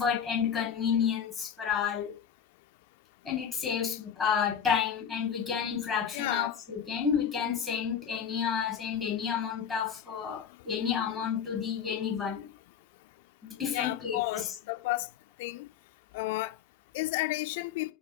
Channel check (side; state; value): right; quieter; 8.0 dB